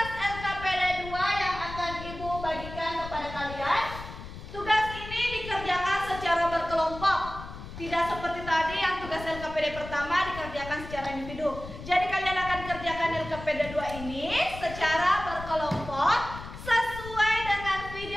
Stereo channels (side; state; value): left; noise; rumble, 12 dB below the sound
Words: LKPD 2 yang akan Ibu bagikan kepada kalian. Tugas ini dikerjakan secara berkelompok. Tidak seperti tadi yang tugas LKPD pertama dikerjakan secara individu. Jadi kalian akan kerjakan LKPD 2 ini secara berkelompok sesuai dengan